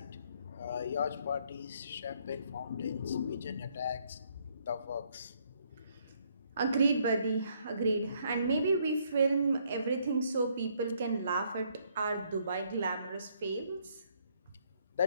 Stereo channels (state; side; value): inverted; both; correlation -0.69